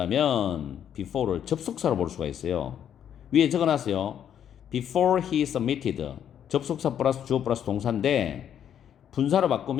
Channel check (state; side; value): quieter; right; 9.4 dB